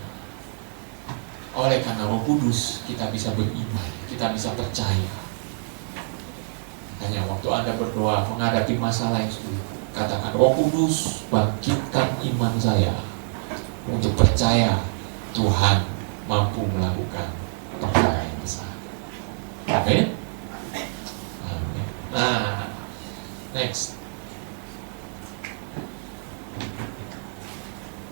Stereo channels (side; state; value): left; silent; 61 dB below the other